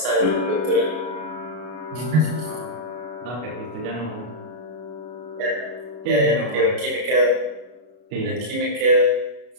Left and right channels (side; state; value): left; late; 33 ms